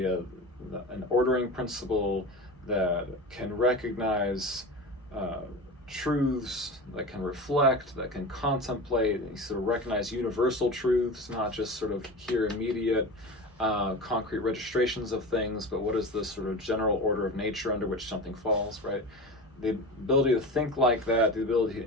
of an ordering principle that can recognize truths, that can reflect, that can contemplate, and sort of recognize universal truths, not just sort of here immediate concrete registrations of things, but what is the sort of general order of nature under which something falls, right? The ability to think like that, the ability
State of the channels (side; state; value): both; normal; correlation 0.29